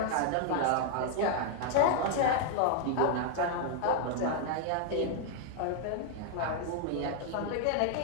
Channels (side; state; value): both; different; correlation 0.00